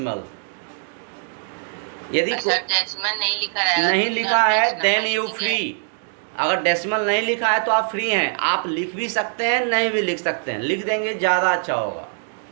यदि सर डेसिमल नहीं लिखा रहेगा नहीं तो लिखा सर है मिक्स्ड देन नंबर यू लिखेंगे. फ्री. अगर डेसिमल नहीं लिखा है तो आप फ्री हैं, आप लिख भी सकते हैं, नहीं भी लिख सकते हैं. लिख देंगे ज़्यादा अच्छा होगा.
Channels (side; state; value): left; silent; 63 dB below the other